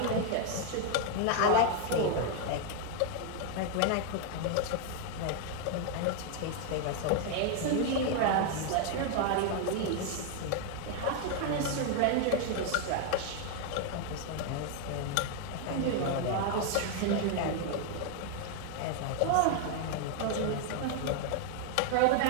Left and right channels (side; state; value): both; different; correlation 0.01